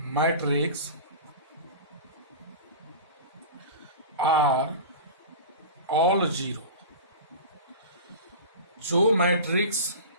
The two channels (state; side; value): inverted; both; correlation -0.32